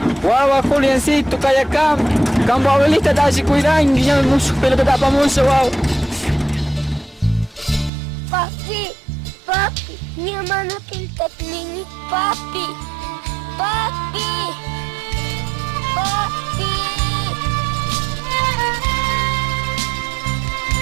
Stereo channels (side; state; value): left; drops out; at 7.9 s